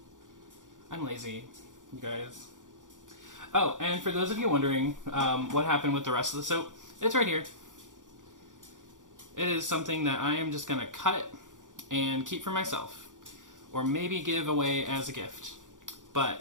I'm lazy, you guys. Oh, and for those of you wondering what happened with the rest of the soap, it's right here. It is something that I am just going to cut and keep for myself, or maybe give away as a gift.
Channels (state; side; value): late; left; 0.87 ms